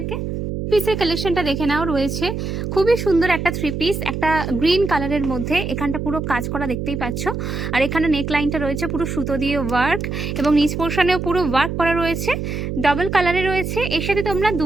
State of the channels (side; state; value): right; noise; hum, 4 dB below the sound